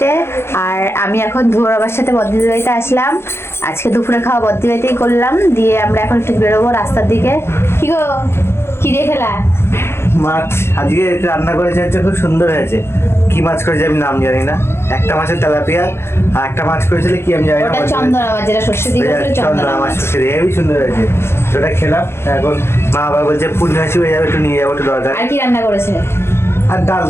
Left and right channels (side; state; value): right; late; 0.12 ms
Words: আর আমি এখন ধুয়োর বাবার সাথে বদ্দিদের বাড়িতে আসলাম। আজকে দুপুরে খাওয়া বদ্দির বাড়িতেই করলাম, দিয়ে আমরা এখন একটু বেরোবো রাস্তার দিকে। কি গো, কি দিয়ে খেলা? মাছ আজকে রান্না করেছে, হচ্ছে খুব সুন্দর হয়েছে। কি মাছ করেছে আমি নাম জানি না। একটা মাছের তেলাপিয়া, আর একটা মাছ করেছিল কি আমি জানি না। ওটা চন্দনা মাছ, যেটা সর্ষে দিয়ে করেছিল চন্দনা মাছ। হেবি সুন্দর হয়েছে, ওটা খেলাম। এখন মা আবার বলছে পূর্ণিমাসী হয়ে যাবে, একটু নিয়ে যাবো, একটু দরকার। আর কি রান্না করেছে? আর ডাল